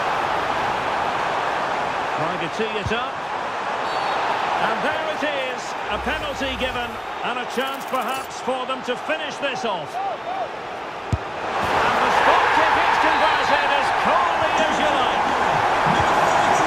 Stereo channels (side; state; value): both; identical; correlation 1.00